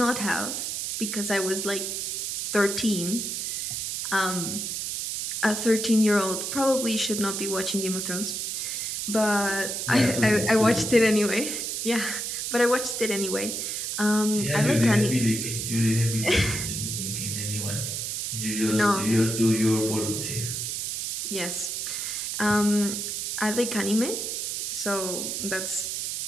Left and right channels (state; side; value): noise; right; hiss, 3 dB below the sound